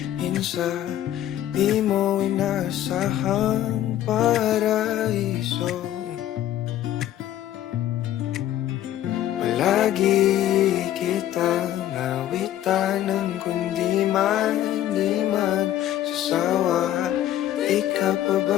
sa di mo inasahang paraiso. Palagi kitang awitan ng kundi man di magsasawa. Di ka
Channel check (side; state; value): right; quieter; 12.4 dB